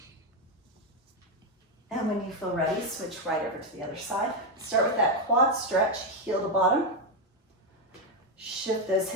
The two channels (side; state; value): both; normal; correlation 0.05